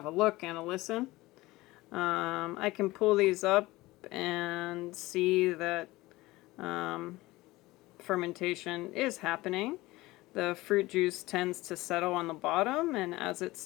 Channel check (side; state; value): right; quieter; 19.5 dB